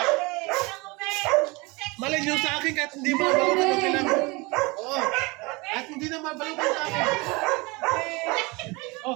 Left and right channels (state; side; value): quieter; left; 25.6 dB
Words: Malay nyo sa akin kahit hindi mabalutan ng kailangan. Oo. Kahit hindi na mabalutan sa akin.